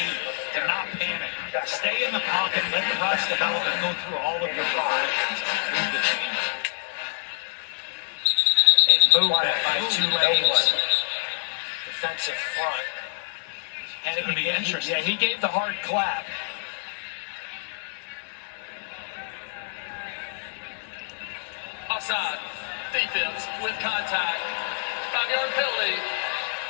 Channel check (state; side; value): silent; right; 61 dB below the other